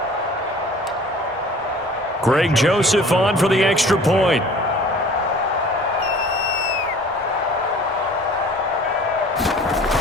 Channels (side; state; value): both; normal; correlation 0.47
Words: Greg Joseph on for the extra point.